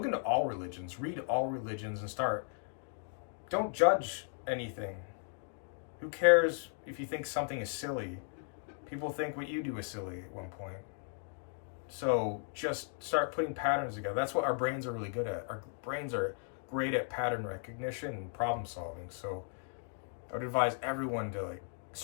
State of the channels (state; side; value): silent; right; 54 dB below the other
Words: into all religions. Read all religions and don't judge anything. Who cares if you think something is silly? People think what you do is silly at one point. So just start putting patterns together. That's what our brains are really good at. Our brains are great at pattern recognition and problem solving. So I would advise everyone to